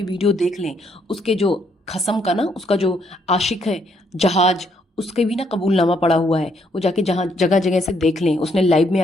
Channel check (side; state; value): both; normal; correlation 0.71